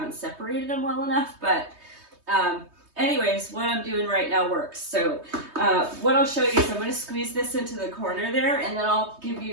separated them well enough. But anyways, what I'm doing right now works. So what I'll show you is I'm going to squeeze this into the corner there, and then I'll give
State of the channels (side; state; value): left; late; 3.2 ms